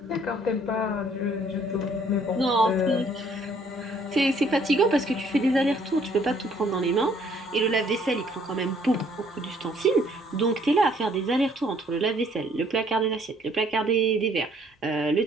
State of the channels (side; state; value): both; normal; correlation 0.62